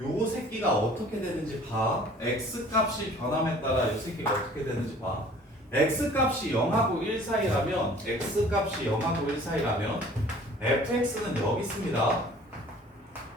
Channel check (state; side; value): normal; both; correlation 0.50